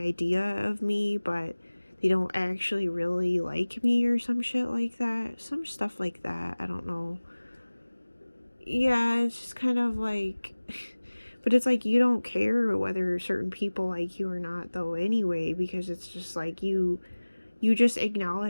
of me, but they don't actually really like me or some shit like that. Some stuff like that. I don't know. Yeah, it's just kind of like but it's like you don't care whether certain people like you or not though anyway, because it's just like you just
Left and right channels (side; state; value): both; inverted; correlation -1.00